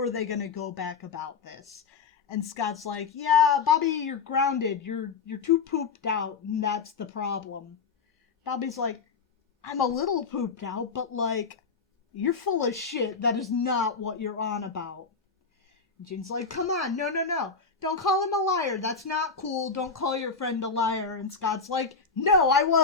they going to go back about this? And Scott's like, yeah, Bobby, you're grounded. You're too pooped out, and that's the problem. Bobby's like, I'm a little pooped out, but like, you're full of shit. That is not what you're on about. And Jean's like, come on, no. Don't call him a liar. That's not cool. Don't call your friend a liar. And Scott's like, no, I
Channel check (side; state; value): right; quieter; 5.1 dB